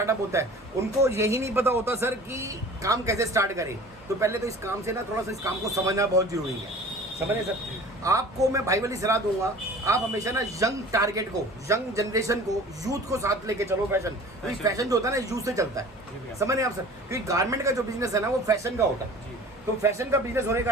होता है उनको यही नहीं पता होता सर कि काम कैसे स्टार्ट करें। तो पहले तो इस काम से ना थोड़ा सा इस काम को समझना बहुत जरूरी है। समझे सर? आपको मैं भाई वाली सलाह दूंगा, आप हमेशा ना यंग टारगेट को, यंग जनरेशन को, यूथ को साथ लेके चलो। फैशन, क्योंकि फैशन जो होता है ना यूथ से चलता है। समझ रहे हैं आप सर? क्योंकि गारमेंट का जो बिजनेस है ना वो फैशन का होता है। तो फैशन का बिजनेस होने के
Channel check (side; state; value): both; normal; correlation 0.43